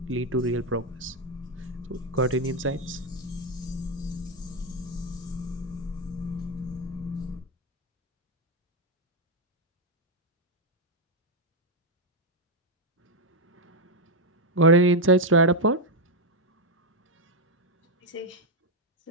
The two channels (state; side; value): normal; both; correlation 0.04